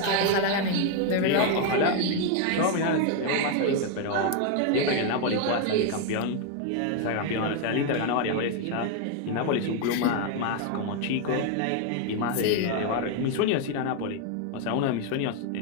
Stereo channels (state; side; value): different; both; correlation 0.01